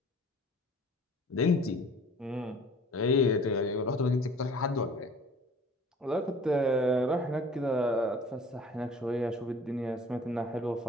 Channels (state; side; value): normal; both; correlation 0.48